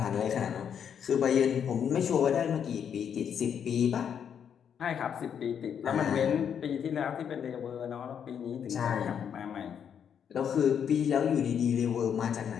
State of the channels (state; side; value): quieter; right; 8.1 dB